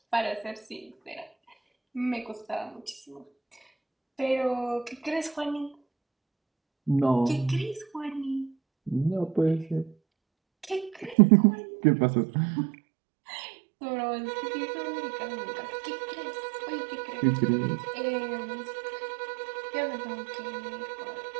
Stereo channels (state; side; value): drops out; left; at 11.2 s